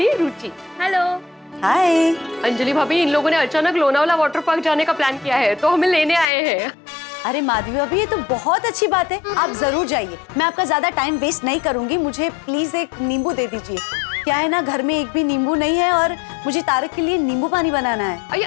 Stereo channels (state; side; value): drops out; right; at 6.2 s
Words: रुचि। हेलो। हाय। अंजलि भाभी, इन लोगों ने अचानक लोनावला वाटर पार्क जाने का प्लान किया है, तो हमें लेने आए हैं। अरे माधवी भाभी, ये तो बहुत अच्छी बात है, आप जरूर जाइए। मैं आपका ज्यादा टाइम वेस्ट नहीं करूंगी, मुझे प्लीज एक नींबू दे दीजिए। क्या है ना, घर में एक भी नींबू नहीं है और मुझे तारक के लिए नींबू पानी बनाना है।